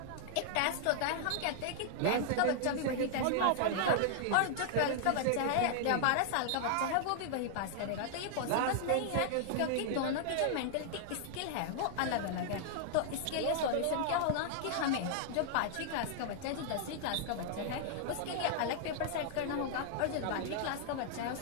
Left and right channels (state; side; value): different; both; correlation -0.01